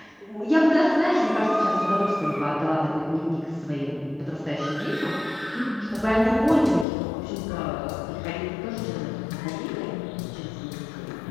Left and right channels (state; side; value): drops out; right; at 6.9 s